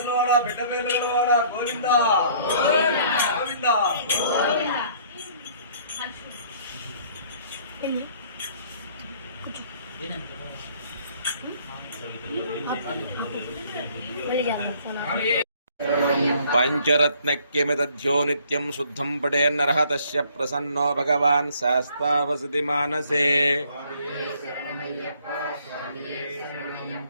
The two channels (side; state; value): both; inverted; correlation -0.59